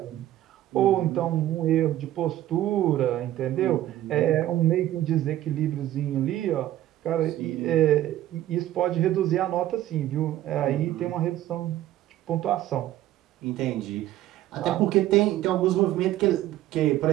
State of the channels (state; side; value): quieter; left; 13.7 dB